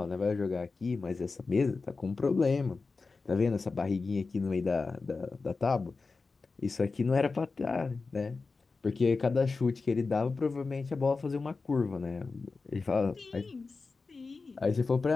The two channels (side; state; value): right; quieter; 4.1 dB